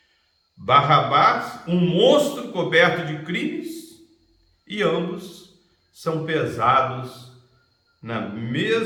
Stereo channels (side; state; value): both; identical; correlation 1.00